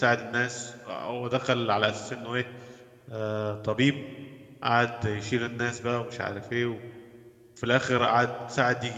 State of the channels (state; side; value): identical; both; correlation 1.00